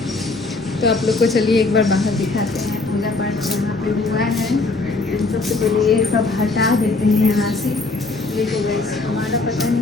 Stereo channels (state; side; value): quieter; right; 3.5 dB